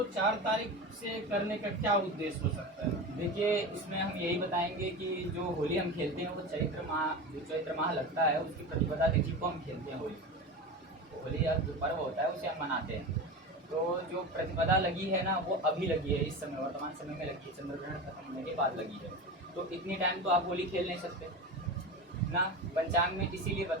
4 तारीख से करने का क्या उद्देश्य हो सकता है? देखिए, इसमें हम यही बताएंगे कि जो होली हम खेलते हैं वो चैत्र माह लगता है, उसकी प्रतिपदा तिथि को हम खेलते हैं। होली जो पर्व होता है उसे हम मनाते हैं। तो जो प्रतिपदा लगी है ना वो अभी लगी है, इस समय वर्तमान समय में लगी है, चंद्र ग्रहण खत्म होने के बाद लगी है। तो इतनी टाइम तो आप होली खेल नहीं सकते ना, पंचांग में इसीलिए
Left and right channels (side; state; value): both; normal; correlation 0.26